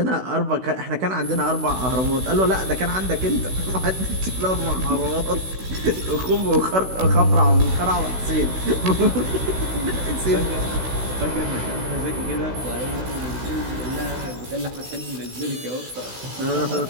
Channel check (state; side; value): late; left; 16 ms